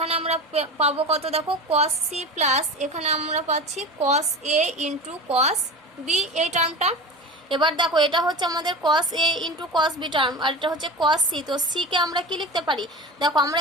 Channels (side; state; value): both; normal; correlation 0.30